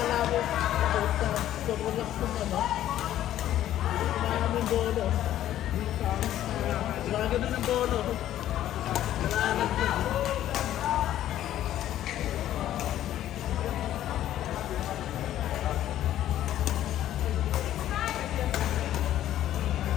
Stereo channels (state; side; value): quieter; right; 12.4 dB